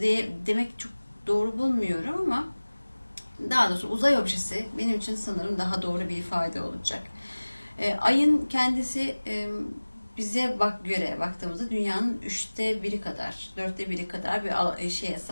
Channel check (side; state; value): both; inverted; correlation -1.00